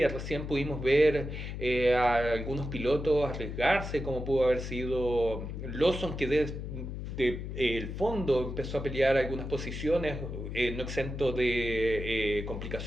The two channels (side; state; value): left; noise; hum, 6 dB below the sound